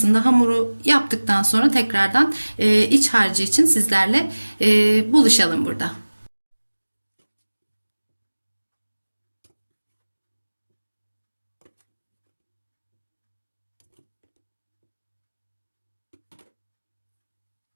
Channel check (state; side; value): inverted; both; correlation -1.00